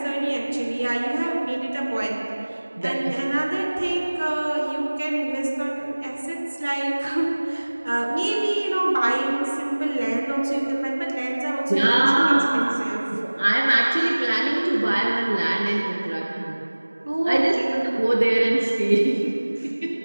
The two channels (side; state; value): both; inverted; correlation -1.00